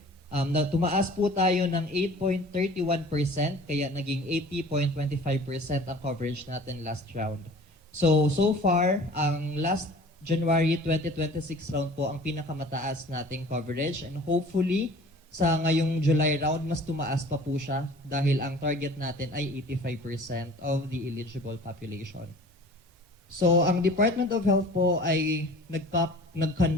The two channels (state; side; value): normal; both; correlation 0.46